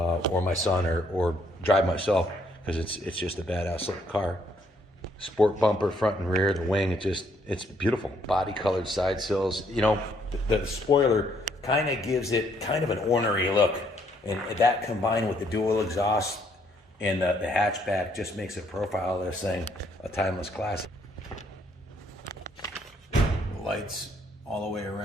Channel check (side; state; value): both; normal; correlation 0.69